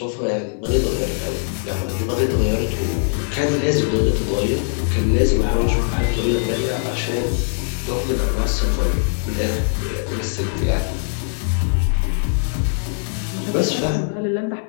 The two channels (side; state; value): right; silent; digital silence